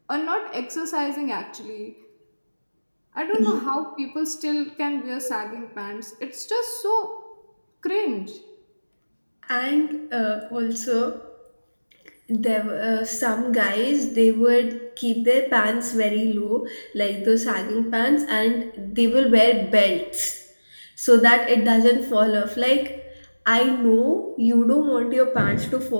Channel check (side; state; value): both; inverted; correlation -1.00